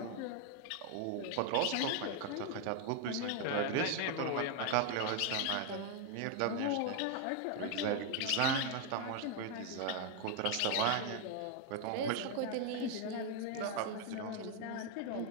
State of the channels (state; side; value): different; both; correlation 0.01